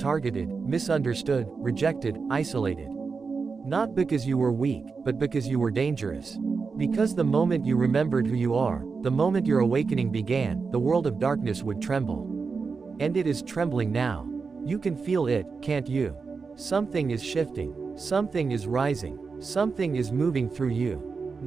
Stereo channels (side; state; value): left; quieter; 4.9 dB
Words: misunderstood, rejected, isolated. Not because you were weak, but because you were dangerous. Because the moment you remembered who you are, the moment your awakening began, the world of darkness would tremble. And it is trembling now. You can feel it, can't you? Something is shifting. Something is rising. Something is moving through you.